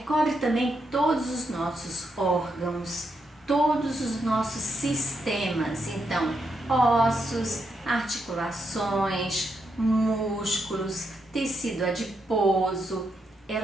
também todos os nossos órgãos, todos os nossos sistemas. Então, ossos, articulações, músculos, tecido adiposo,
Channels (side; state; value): both; normal; correlation 0.81